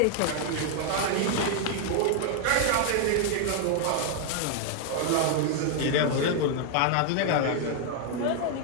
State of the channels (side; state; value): both; different; correlation 0.00